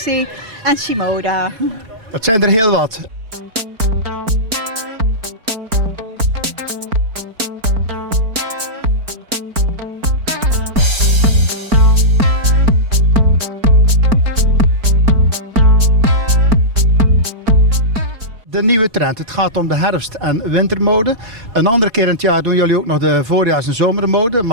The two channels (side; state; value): left; late; 4.5 ms